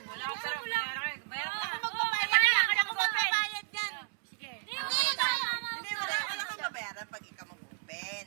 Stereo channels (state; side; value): silent; left; 56 dB below the other